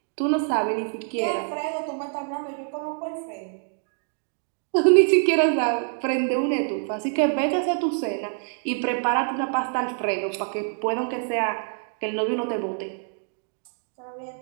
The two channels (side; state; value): left; silent; digital silence